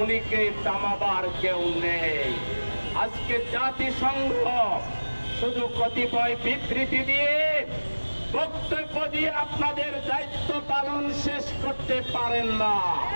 থামাবার কেউ নেই। আজকে জাতিসংঘ শুধু কতিপয় বিবৃতি দিয়ে, বক্তব্য দিয়ে আপনাদের দায়িত্ব পালন শেষ করতে পারেন না।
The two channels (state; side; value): inverted; both; correlation -1.00